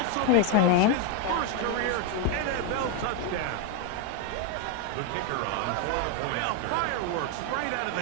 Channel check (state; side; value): different; both; correlation 0.01